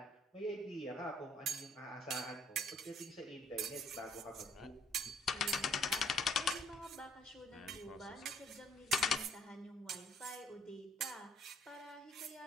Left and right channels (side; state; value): both; normal; correlation 0.63